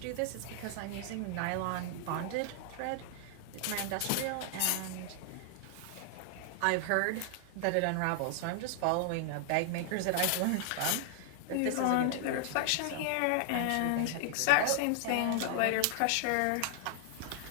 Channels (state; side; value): different; both; correlation 0.00